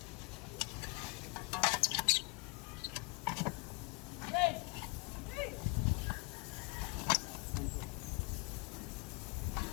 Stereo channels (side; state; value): right; quieter; 27.4 dB